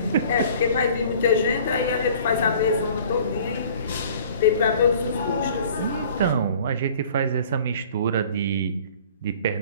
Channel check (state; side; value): inverted; both; correlation -0.50